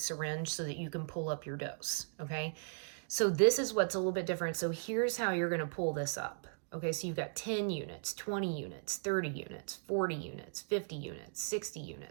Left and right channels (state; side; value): silent; left; digital silence